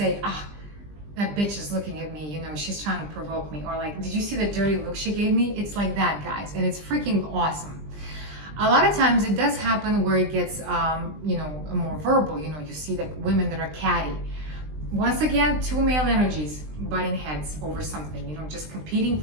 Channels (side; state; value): left; late; 20 ms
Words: that bitch is looking at me, you know, she's trying to provoke me. Or like, did you see the dirty look she gave me? It's like that, guys. And it's freaking awesome. A lot of times it does happen where it gets, you know, more verbal. You know, you see like women that are catty. Once again, two male energies butting heads over something, you know, just competing